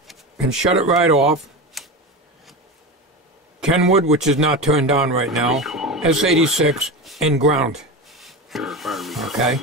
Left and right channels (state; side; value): normal; both; correlation 0.23